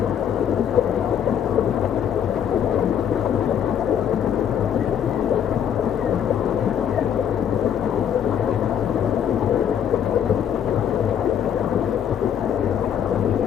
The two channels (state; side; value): quieter; right; 8.9 dB